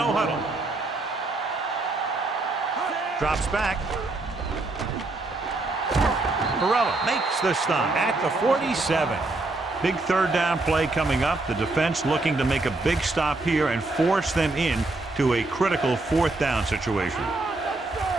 Drops back. Perella makes the stop at the 47. Big 3rd down play coming up. The defense looking to make a big stop here and force them in to a critical 4th down situation.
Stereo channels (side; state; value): left; quieter; 3.1 dB